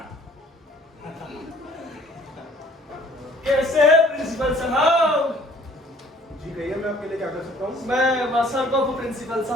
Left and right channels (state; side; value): normal; both; correlation 0.56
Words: कैसे है प्रिंसिपल साहब? जी कहिए, मैं आपके लिए क्या कर सकता हूँ? मैं वासर को प्रिंसिपल